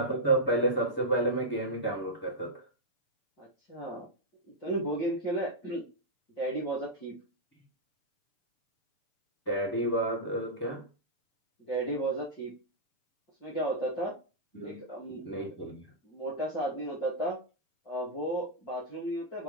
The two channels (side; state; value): right; late; 6.9 ms